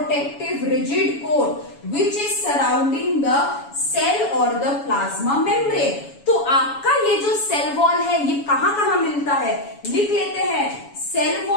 rigid coat which is surrounding the cell और द प्लाज्मा मेम्ब्रेन। तो आपका ये जो सेल वॉल है ये कहां कहां मिलता है? लिख लेते हैं। Cell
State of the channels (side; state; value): right; late; 7.1 ms